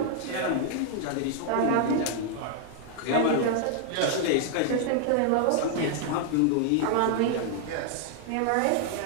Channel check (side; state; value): both; different; correlation 0.00